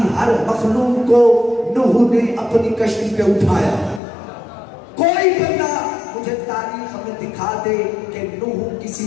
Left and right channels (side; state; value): right; drops out; at 4.0 s